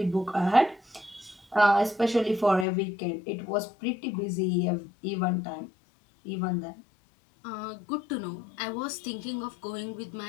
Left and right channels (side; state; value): right; drops out; at 2.7 s